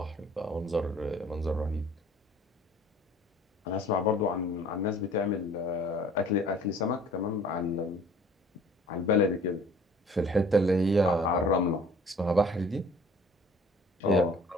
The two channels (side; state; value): both; normal; correlation 0.51